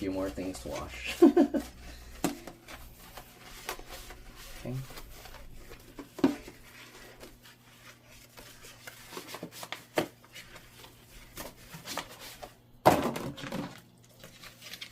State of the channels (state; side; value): identical; both; correlation 1.00